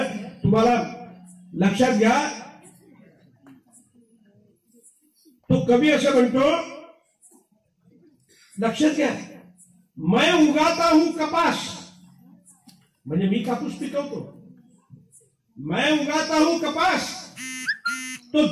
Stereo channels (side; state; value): both; identical; correlation 1.00